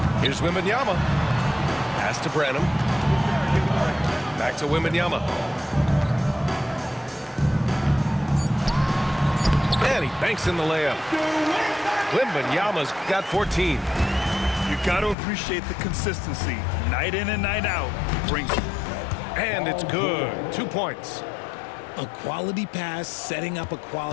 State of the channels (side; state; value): right; drops out; at 15.2 s